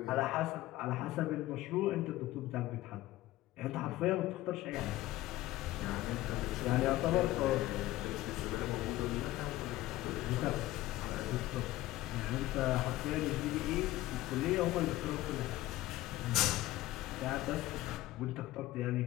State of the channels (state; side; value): quieter; right; 16.5 dB